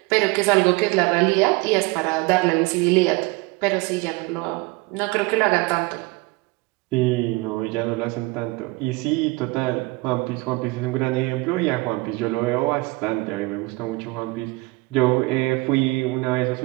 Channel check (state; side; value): quieter; left; 23.5 dB